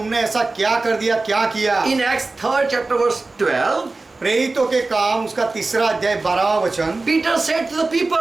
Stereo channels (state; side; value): quieter; left; 3.5 dB